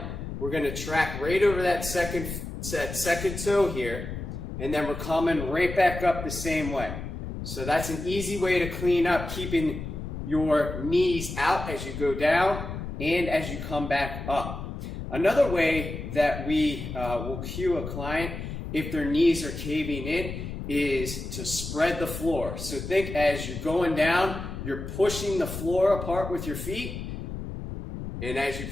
we're going to track right over that second toe here, and then we're coming right back up the same way. So that's an easy way to clean up, keeping your knees out as you go down and as you come back up. Another way that we will cue a client if their knees are caving in is to spread the floor. So think as you're going down, you're pushing the floor apart with your feet, and as you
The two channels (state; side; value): noise; left; rumble, 7 dB below the sound